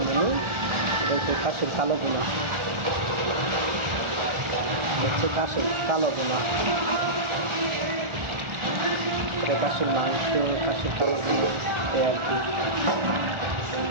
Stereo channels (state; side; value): late; left; 1.4 ms